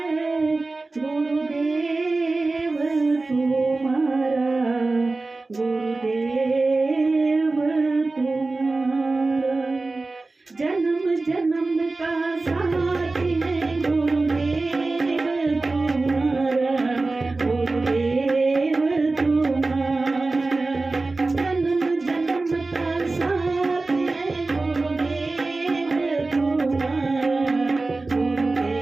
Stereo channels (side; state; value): left; quieter; 3.4 dB